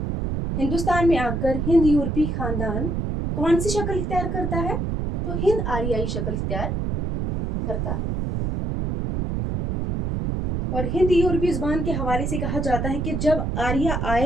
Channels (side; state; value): right; noise; rumble, 1 dB below the sound